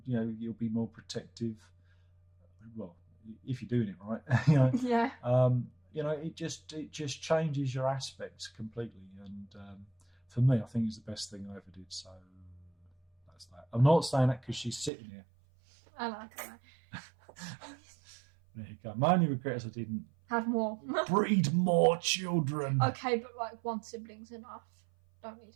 be more protective. Well, if you're doing it right, Yeah. It just changes your aspects completely. And for me, I think it's the best thing I ever did. So that's that. I'm not saying that because she's sitting here. I like it. There you go. My only regret is I didn't Have more. breed more children. Okay, but like one sibling's enough. Don't need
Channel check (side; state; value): left; drops out; at 14.9 s